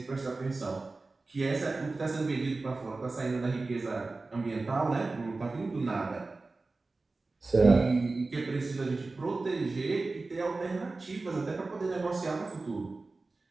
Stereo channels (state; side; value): quieter; left; 3.5 dB